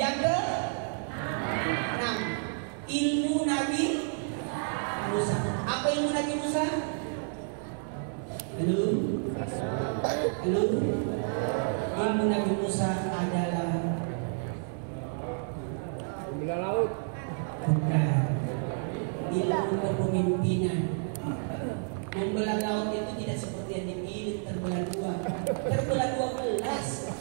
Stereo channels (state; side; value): silent; left; 58 dB below the other